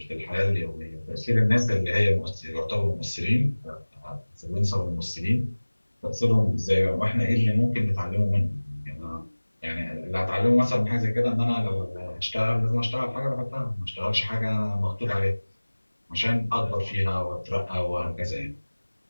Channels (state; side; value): inverted; both; correlation -1.00